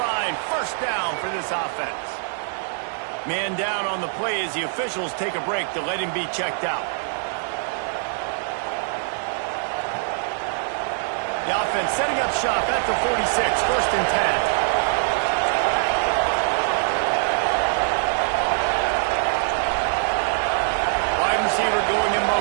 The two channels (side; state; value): left; silent; digital silence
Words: first down for this offense. Man down on the play as the officials take a break to let him be checked out. The offense setting up shop at the 46, first and 10. Wide receiver going in